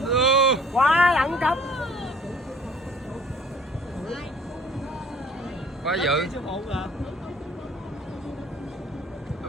Quá đẳng cấp. Quá dữ. Siêu hụ rồi.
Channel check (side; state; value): both; normal; correlation 0.54